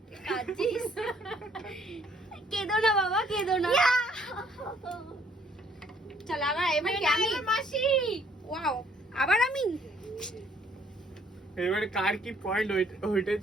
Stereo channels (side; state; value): both; normal; correlation 0.63